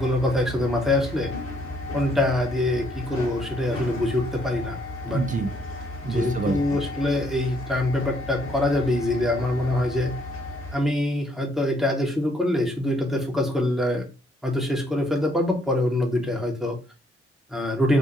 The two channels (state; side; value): normal; both; correlation 0.68